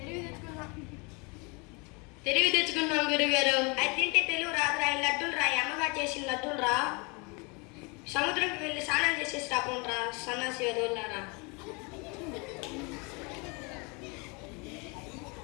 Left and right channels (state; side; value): quieter; right; 30.2 dB